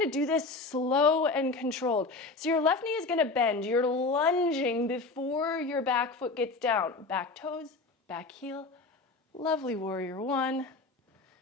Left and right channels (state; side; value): quieter; right; 3.6 dB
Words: to do this slow and controlled. So your left knee is gonna bend. You're lunging before your back foot gets down. Back toes, back heel. Lovely warrior one.